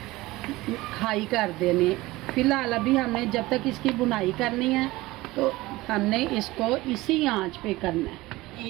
हाई कर देनी। फ़िलहाल अभी हमने जब तक इसकी बुनाई करनी है तो हमने इसको इसी आंच पे करना है।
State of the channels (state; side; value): quieter; left; 19.4 dB